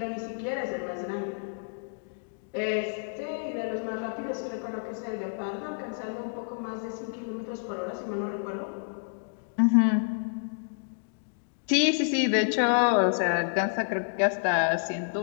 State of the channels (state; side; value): silent; right; digital silence